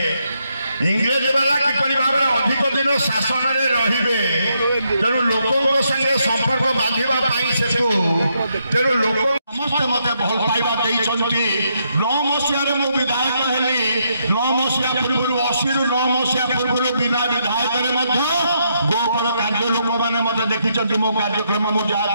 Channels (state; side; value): inverted; both; correlation -0.77